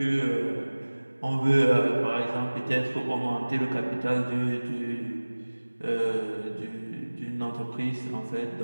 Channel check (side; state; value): both; inverted; correlation -1.00